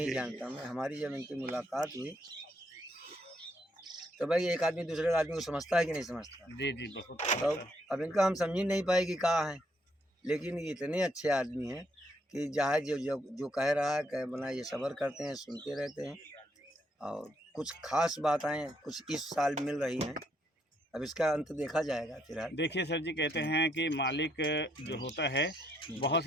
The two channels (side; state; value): both; normal; correlation 0.73